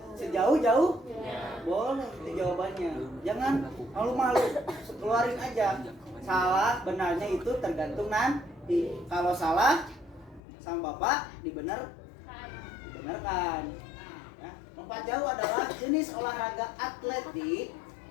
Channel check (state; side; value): drops out; right; at 10.4 s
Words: sejauh-jauh? Boleh, itu jawabannya. Jangan malu-malu, keluarin aja. Salah, benarnya itu tergantung nanti. Kalau salah, sama Bapak dibenarkan. Ya. Lompat jauh adalah jenis olahraga atletik